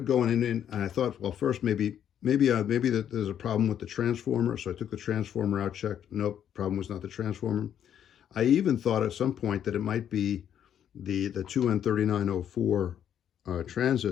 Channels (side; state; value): right; quieter; 9.6 dB